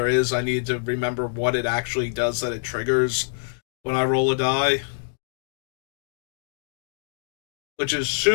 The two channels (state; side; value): silent; right; digital silence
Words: is, I need to remember what it actually does that it triggers when I roll a die. Which is